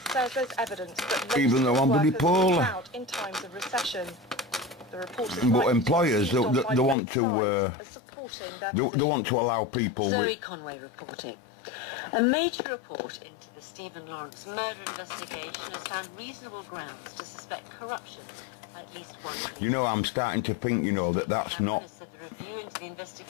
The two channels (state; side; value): drops out; right; at 7.0 s